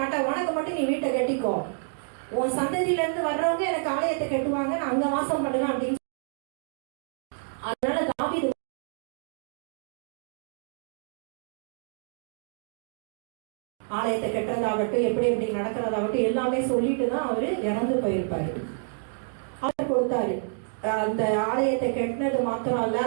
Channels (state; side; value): silent; left; digital silence